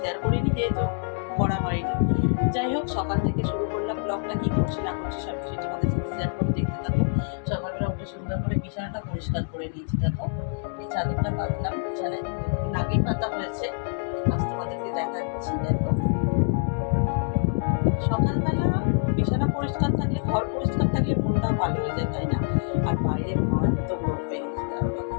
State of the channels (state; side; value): silent; right; 61 dB below the other